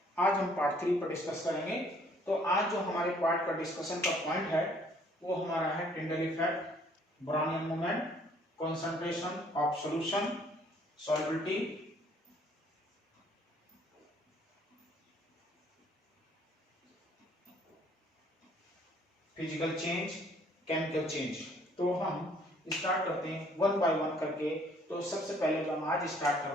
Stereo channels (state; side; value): normal; both; correlation 0.61